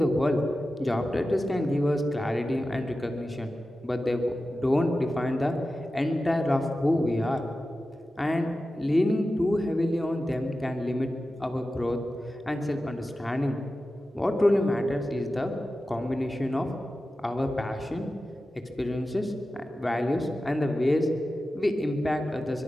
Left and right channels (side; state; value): both; normal; correlation 0.93